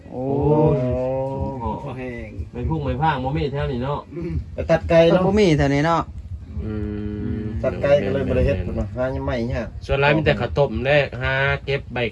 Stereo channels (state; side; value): identical; both; correlation 1.00